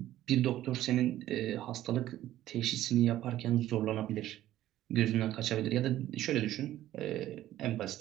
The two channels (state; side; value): quieter; left; 13.6 dB